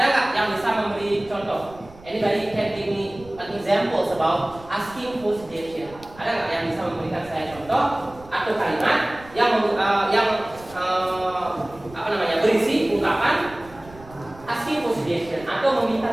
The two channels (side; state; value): right; noise; rumble, 21 dB below the sound